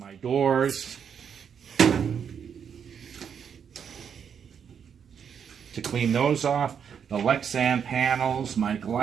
doors to clean those off, the Lexan panels, my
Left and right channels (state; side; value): quieter; left; 7.5 dB